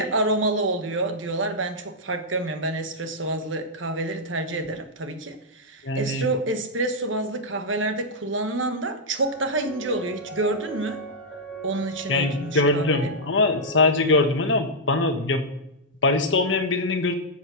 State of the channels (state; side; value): normal; both; correlation -0.06